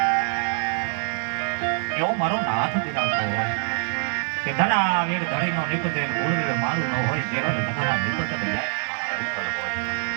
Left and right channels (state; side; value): silent; left; digital silence